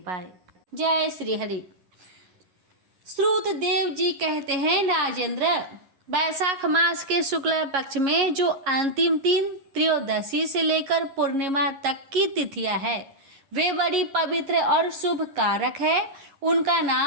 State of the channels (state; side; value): late; left; 11 ms